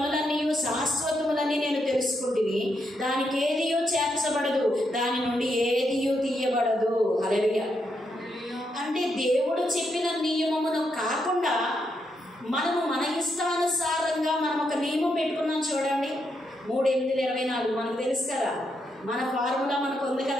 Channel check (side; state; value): both; normal; correlation 0.80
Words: శాశ్వతములని నేను తెలుసుకుంటుని. దానికి ఏదియూ చేర్చబడదు, దాని నుండి ఏదియూ తీయబడదు. హల్లెలూయా. అంటే దేవుడు చెప్పిన నియమమును కాకుండా మనము మన ఇష్టానుసారంగా మనం ఒక నియమం పెట్టుకున్నాం చూడండి. 3:8-24 మనకు తెలుసు కదా. మన ఫార్ములా మనకు ఉంది